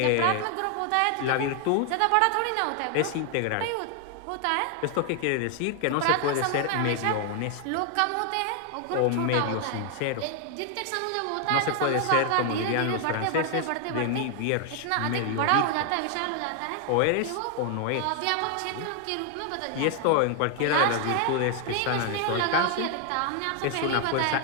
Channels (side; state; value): both; different; correlation 0.00